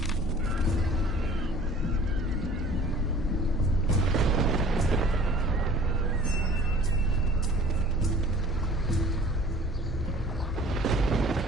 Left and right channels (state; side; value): normal; both; correlation 0.49